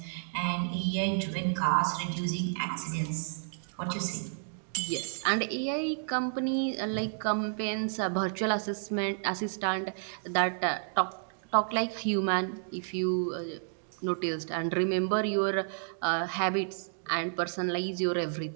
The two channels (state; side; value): silent; left; digital silence